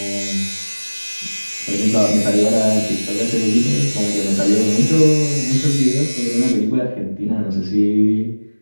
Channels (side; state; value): both; inverted; correlation -1.00